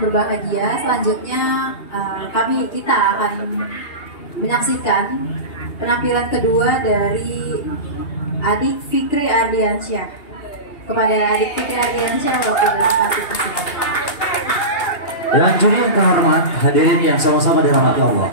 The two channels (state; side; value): late; right; 2.8 ms